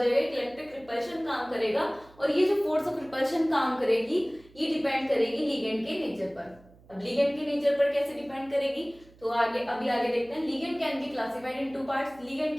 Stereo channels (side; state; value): right; noise; hum, 26 dB below the sound